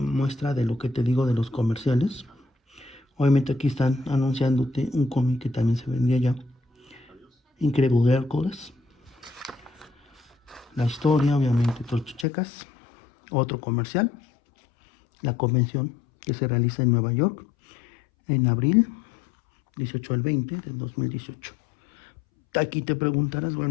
muestra de lo que te digo de los comerciales. Obviamente aquí están anunciándote un cómic que también se vendía ya, Incredible Hércules. La historia, obviamente, tú checas. Otro comercial, la convención que se realiza en Nueva York en abril 18 al 20 del 2018. Aquí te preguntarás,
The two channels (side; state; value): right; drops out; at 12.2 s